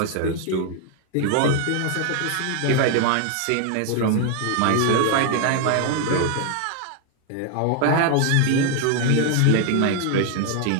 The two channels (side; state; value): both; different; correlation 0.00